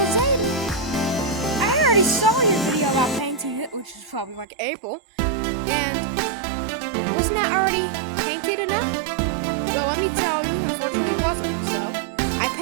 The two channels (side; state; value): left; drops out; at 4.5 s